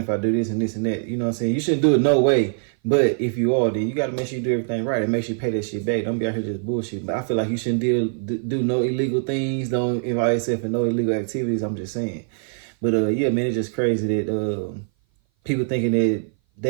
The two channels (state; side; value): silent; left; 57 dB below the other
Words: I do this and this and that. You know what I'm saying? You shouldn't do it no way. But if you are, then you got to make sure you do everything right and make sure you pay that shit back. Don't be out here just bullshit. But I feel like you shouldn't do no illegal things. Don't involve yourself in no illegal activities. I'm just saying. But yeah, man, it's just crazy that people thinking that